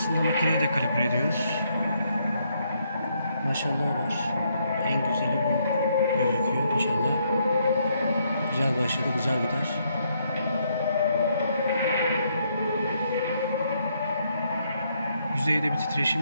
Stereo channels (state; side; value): inverted; both; correlation -0.74